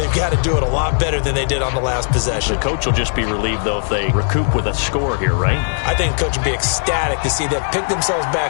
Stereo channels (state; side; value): silent; right; digital silence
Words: got to do it a lot better than they did on the last possession. The coach will just be relieved, though, if they recoup with a score here, right? I think the coach would be ecstatic to see them pick themselves